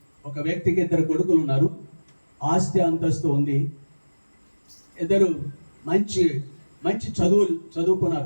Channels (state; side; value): inverted; both; correlation -1.00